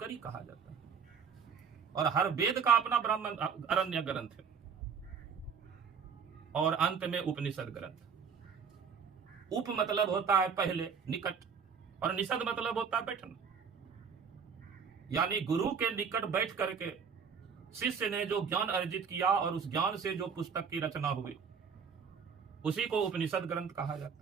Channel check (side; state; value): left; quieter; 6.3 dB